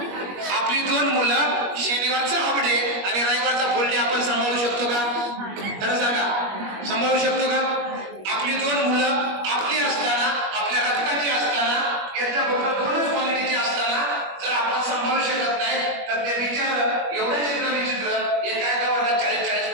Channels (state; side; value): late; left; 21 ms